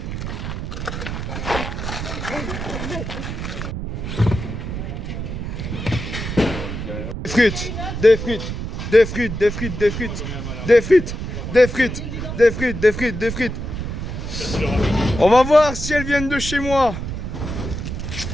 frites, des frites, des frites, des frites, des frites, des frites, des frites, des frites, des frites, des frites. On va voir si elles viennent de chez moi.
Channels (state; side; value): noise; right; rumble, 5 dB below the sound